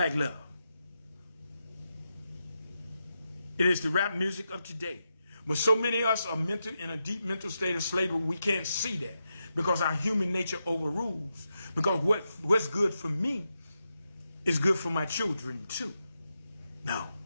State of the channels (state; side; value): inverted; both; correlation -0.87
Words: love. It is the rap music of today. But so many of us are in a deep mental state of slavery, we can't see that because our human nature overrules. Because what's good for me is good for my children too. No,